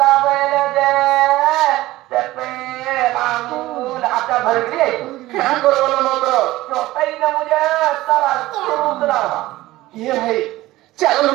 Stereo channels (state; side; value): quieter; left; 17.3 dB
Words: ବେଲେ ଯେ ତେପେ ମାମୁଲ ହାତ ଧରିକିରି କାଁ କରବଲ ମକ ଚଟାଇ ଦମୁ ଯେ ତାର ସୁନ୍ଦର କିଏ ଭାଇ ଚାଲ